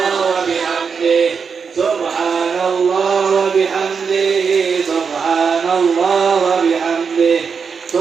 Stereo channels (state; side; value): quieter; left; 5.9 dB